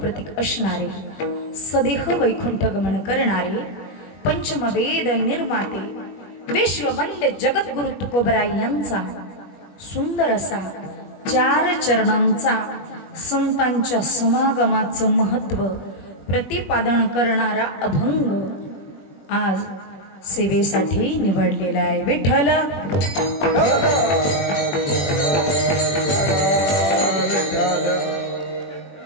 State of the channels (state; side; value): late; right; 21 ms